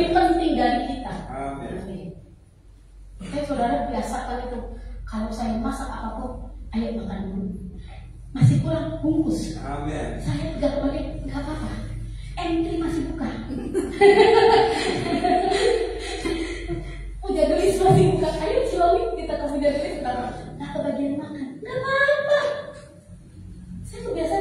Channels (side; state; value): both; identical; correlation 1.00